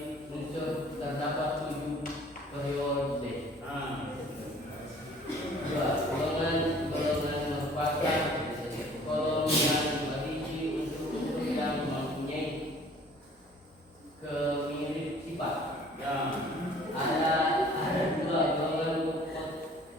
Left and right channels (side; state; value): both; normal; correlation 0.52